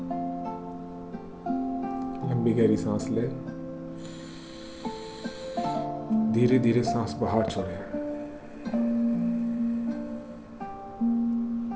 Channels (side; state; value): both; identical; correlation 1.00